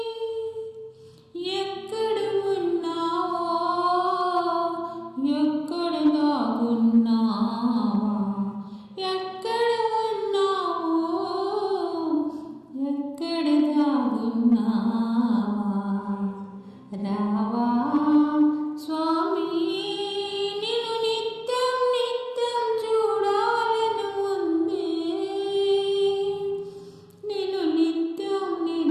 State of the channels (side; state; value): both; identical; correlation 1.00